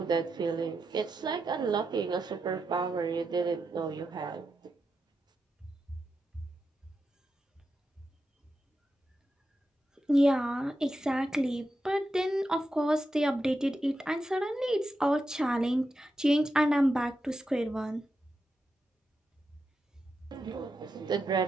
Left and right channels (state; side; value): normal; both; correlation 0.87